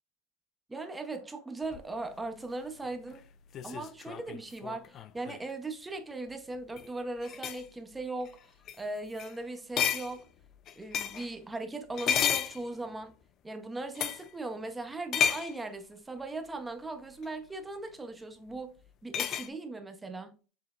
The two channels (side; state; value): right; quieter; 3.1 dB